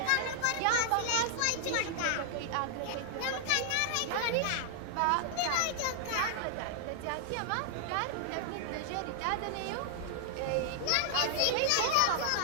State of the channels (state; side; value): different; both; correlation 0.00